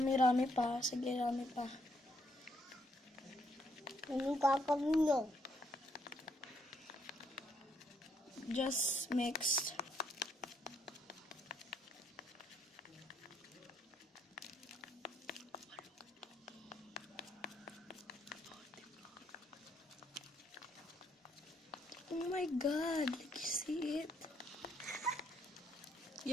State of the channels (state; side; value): normal; both; correlation 0.72